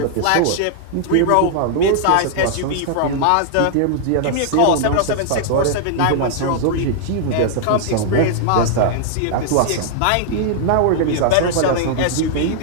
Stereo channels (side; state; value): both; different; correlation -0.01